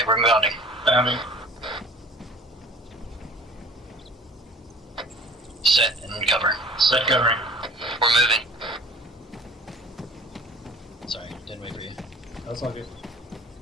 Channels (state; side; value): normal; both; correlation 0.48